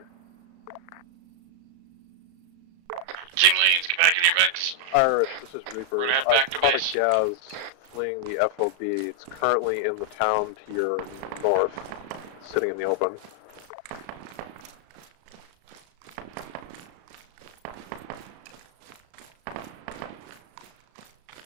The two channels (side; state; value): left; late; 35 ms